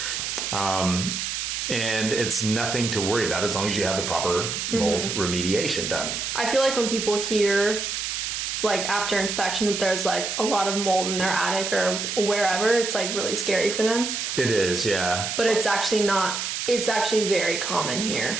And it's nothing to worry about as long as you have the proper mold remediation done. I feel like when people hear, like after inspection, that there's like a lot of mold in their attic or wherever, it's like really scary for them. It is, yeah. But it's actually not. It's actually very common here.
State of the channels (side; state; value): right; noise; hiss, 3 dB below the sound